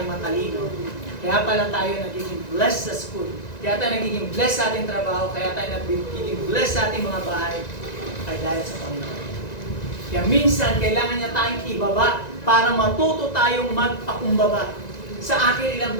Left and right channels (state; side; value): late; right; 1.9 ms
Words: matalino, kaya pala tayo nagiging blessed sa school, kaya tayo nagiging blessed sa ating trabaho, kaya tayo nagiging blessed sa ating mga bahay, ay dahil sa Panginoon. Kaya minsan, kailangan niya tayong ibaba para matuto tayong magpakumbaba. Sa akin, ilang